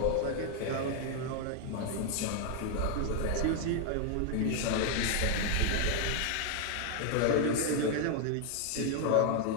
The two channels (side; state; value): both; different; correlation 0.01